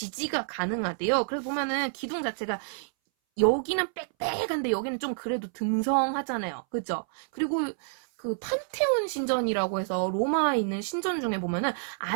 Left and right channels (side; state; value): left; silent; 59 dB below the other